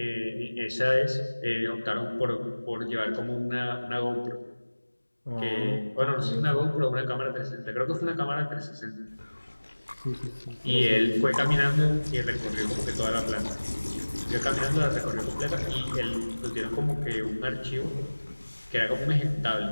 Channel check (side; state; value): both; inverted; correlation -1.00